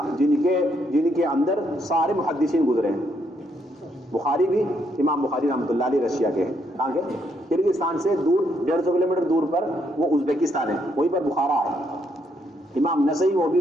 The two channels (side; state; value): both; normal; correlation 0.74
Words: کے اندر سارے محدثین گزرے ہیں، بخاری بھی امام بخاری رحمۃ اللہ علیہ رشیا کے ہیں. کہاں کے؟ کرگستان سے دور 150 کلومیٹر دور پر وہ ازبیکستان ہے, وہیں پر بخارا ہے. امام نسائی وہ بھی